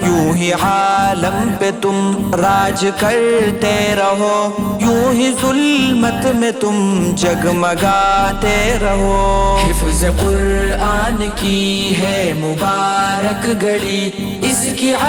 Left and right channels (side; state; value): both; identical; correlation 1.00